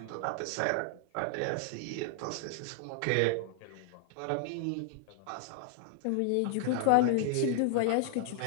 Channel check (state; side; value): different; both; correlation 0.00